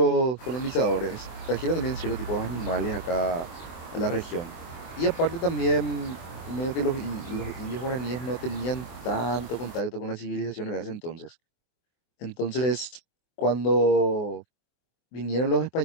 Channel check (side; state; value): right; late; 24 ms